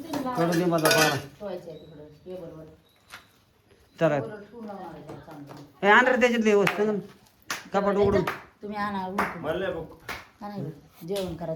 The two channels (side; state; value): both; identical; correlation 1.00